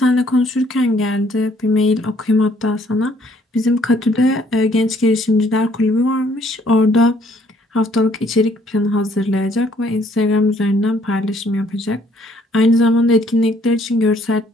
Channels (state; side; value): normal; both; correlation 0.64